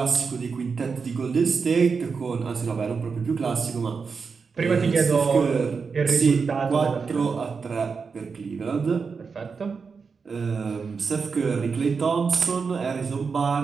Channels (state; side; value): quieter; left; 5.3 dB